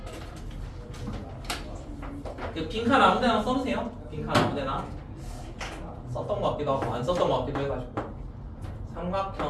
그 빈칸 아무데나 써주세요. 빈칸 아무데나. 썼던 것 같기도 하고 안 썼던 것 같기도 해가지고.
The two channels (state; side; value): identical; both; correlation 1.00